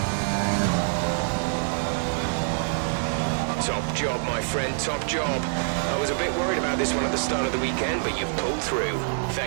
Top job, my friend, top job. I was a bit worried about this one at the start of the weekend, but you've pulled through.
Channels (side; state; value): left; silent; digital silence